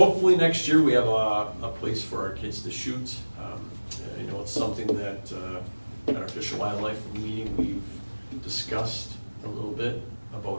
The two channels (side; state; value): both; inverted; correlation -1.00